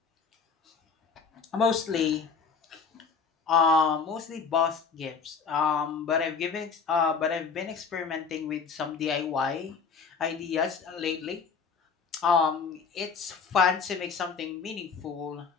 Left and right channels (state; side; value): quieter; right; 5.6 dB